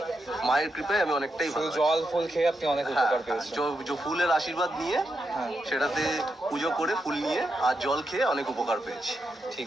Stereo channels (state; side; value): normal; both; correlation 0.85